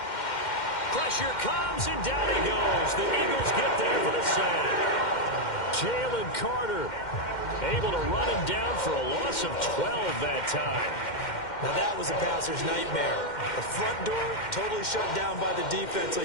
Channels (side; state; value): right; late; 2.1 ms